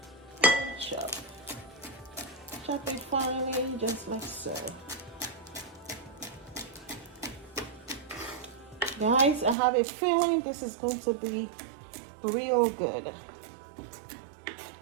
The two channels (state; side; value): drops out; left; at 9.6 s